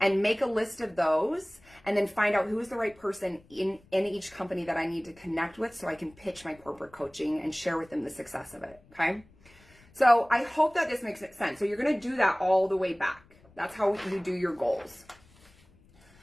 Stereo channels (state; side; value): noise; left; rumble, 28 dB below the sound